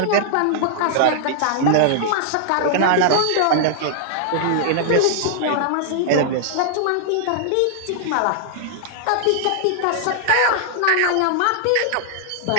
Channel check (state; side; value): different; both; correlation -0.01